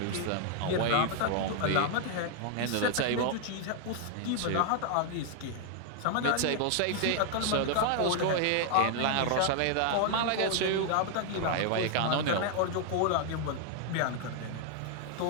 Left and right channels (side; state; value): both; different; correlation 0.00